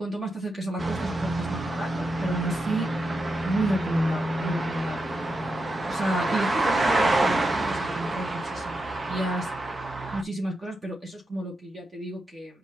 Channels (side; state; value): both; normal; correlation 0.87